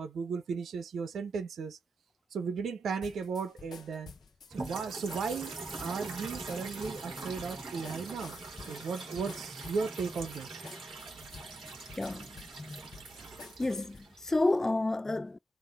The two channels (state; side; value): normal; both; correlation 0.85